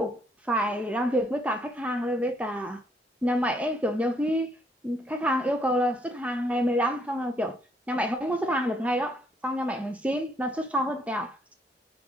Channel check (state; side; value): normal; both; correlation 0.69